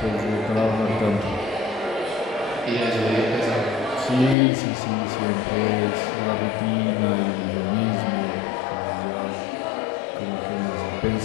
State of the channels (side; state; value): right; drops out; at 4.4 s